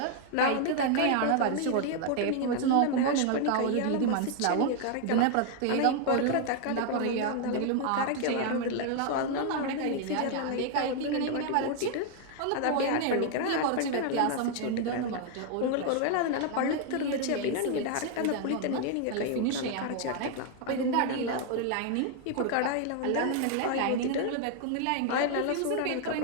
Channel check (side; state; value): both; different; correlation 0.00